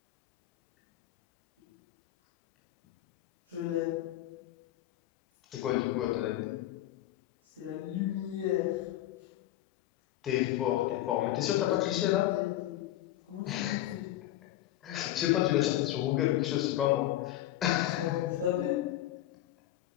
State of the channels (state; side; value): quieter; right; 14.1 dB